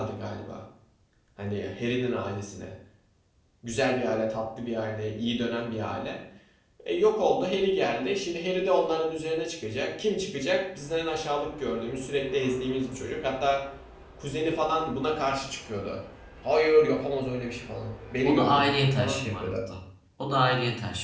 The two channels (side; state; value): both; identical; correlation 1.00